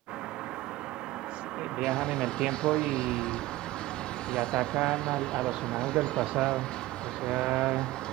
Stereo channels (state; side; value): quieter; left; 17.4 dB